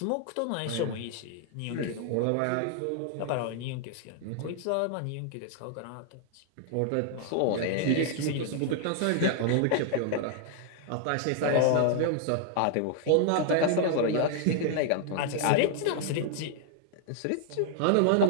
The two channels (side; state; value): both; different; correlation 0.00